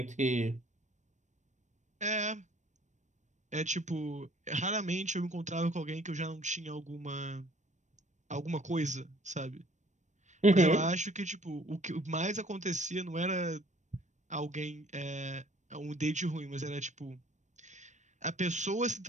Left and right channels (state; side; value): late; left; 0.35 ms